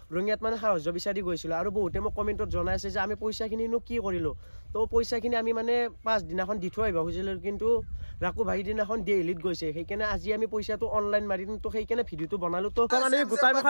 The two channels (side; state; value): both; inverted; correlation -1.00